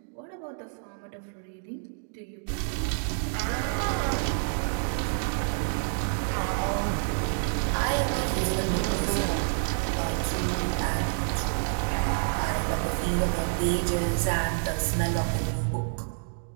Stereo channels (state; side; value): silent; left; digital silence